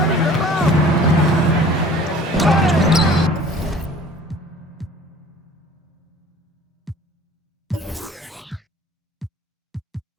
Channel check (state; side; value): normal; both; correlation 0.48